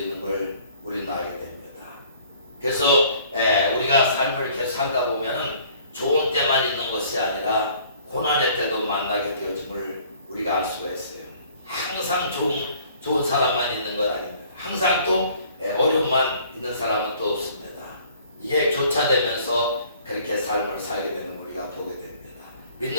걸 우리는 알게 됩니다. 그래서 우리가 삶을 이렇게 살다 보면은 좋은 때만 있는 것이 아니라 고난의 때도 만나게 되어짐을 우리가 알 수가 있어요. 항상 좋은 사람만 있는 건 아닙니다. 항상 또 어려움만 있는 사람은 또 없습니다. 이게 교차되면서 그렇게 삶을 살게 되는 걸 우리가 보게 됩니다.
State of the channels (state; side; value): inverted; both; correlation -0.56